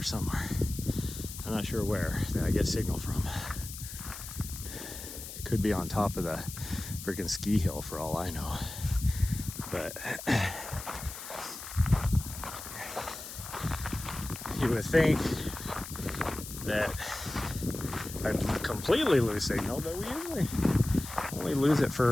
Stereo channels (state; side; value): noise; left; hiss, 11 dB below the sound